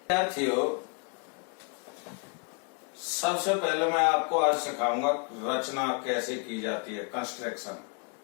सबसे पहले मैं आपको आज सिखाऊंगा रचना कैसे की जाती है, कंस्ट्रक्शन।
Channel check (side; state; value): right; quieter; 35.5 dB